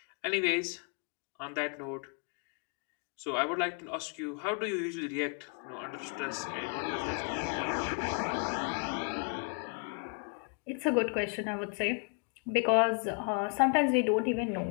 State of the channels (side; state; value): right; quieter; 39.6 dB